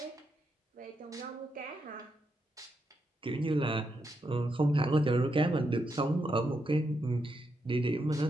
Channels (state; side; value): normal; both; correlation 0.82